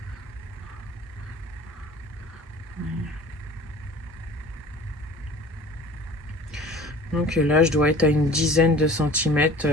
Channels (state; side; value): normal; both; correlation 0.45